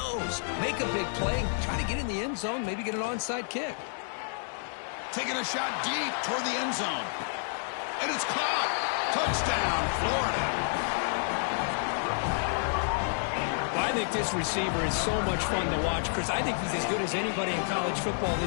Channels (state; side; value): silent; right; digital silence